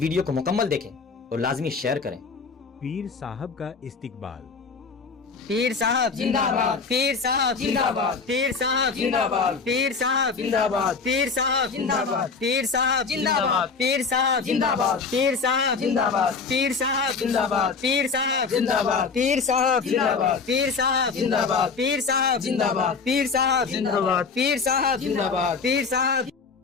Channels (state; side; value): quieter; right; 4.9 dB